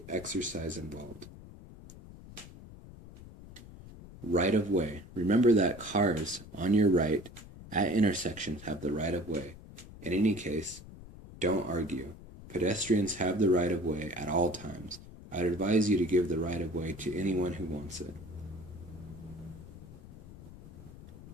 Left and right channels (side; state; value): left; noise; rumble, 17 dB below the sound